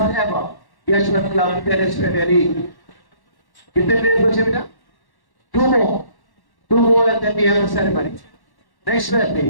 ever Yeshwant Club Tennis Premier League. कितने players बचे बेटा? Two more. Two more and then we have the ceremony. Next player,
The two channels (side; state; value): right; late; 1.1 ms